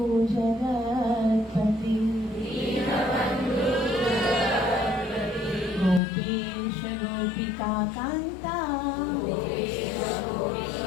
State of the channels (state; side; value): drops out; right; at 6.0 s